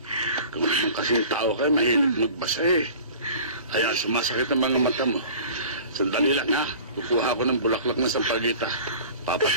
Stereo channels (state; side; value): inverted; both; correlation -0.42